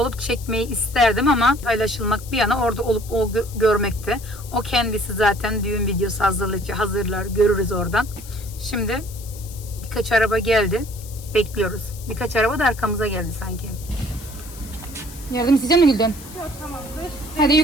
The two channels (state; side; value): noise; left; hiss, 17 dB below the sound